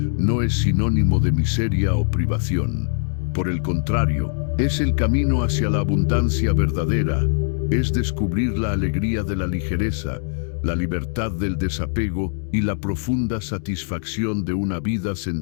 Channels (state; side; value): silent; right; digital silence